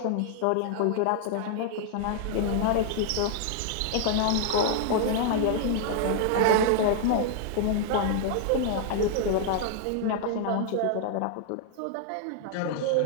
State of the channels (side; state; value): both; different; correlation 0.00